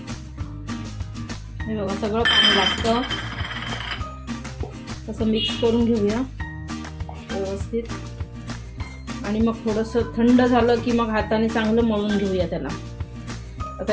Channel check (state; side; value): identical; both; correlation 1.00